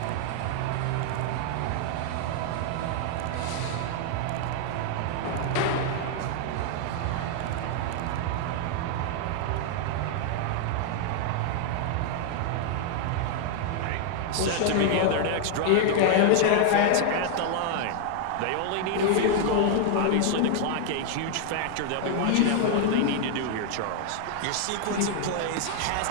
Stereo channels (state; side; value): different; both; correlation 0.00